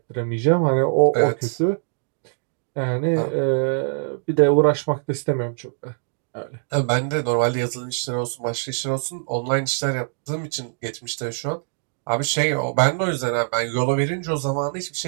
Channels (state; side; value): silent; left; digital silence